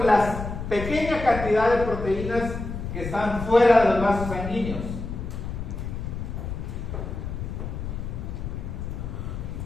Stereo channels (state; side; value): noise; left; rumble, 6 dB below the sound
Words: las pequeñas cantidades de proteínas que están fuera de los vasos sanguíneos?